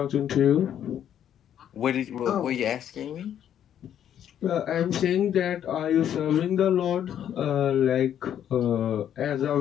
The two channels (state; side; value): quieter; right; 10.0 dB